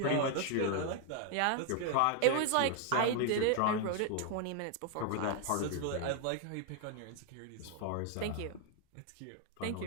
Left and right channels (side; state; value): both; different; correlation 0.00